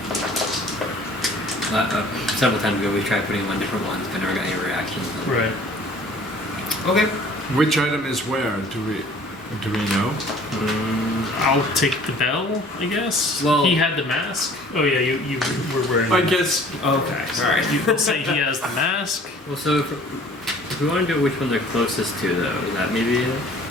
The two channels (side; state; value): both; normal; correlation 0.52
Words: Several times ago, we tried putting them on different ones, but never got any reactions. Right. Okay. Which item is where? Do we know? I'll take the bell, I guess. Well- he had the mask. Oh yeah, you were wearing. I the guess. Okay. All right. You can say he has the mask. Well, so if we want to do which one they're closest to, though, is that maybe it?